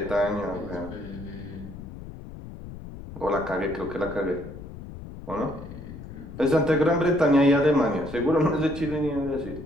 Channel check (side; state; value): left; noise; rumble, 13 dB below the sound